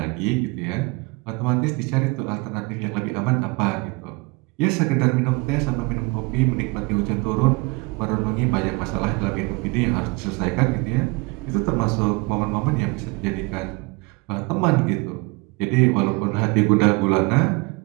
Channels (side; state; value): left; quieter; 26.7 dB